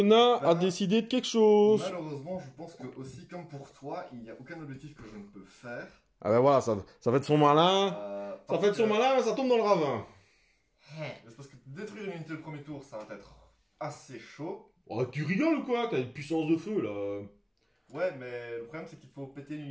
nain a décidé de quelque chose. Malheureusement, je pense que aussi, comme pour toi, il n'y a aucun objectif que je ne peux faire. Ah ben voilà, ça fait de son malin. Ça fait de son malin, mais ça tombe dans le ravin. C'est parce que détruire une unité le premier tour, ça va être assez chaud. Oh, tu rigoles ou quoi? T'as une puissance de feu, là. Ouais, mais le problème, c'est qu'il faut péter une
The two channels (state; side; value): identical; both; correlation 1.00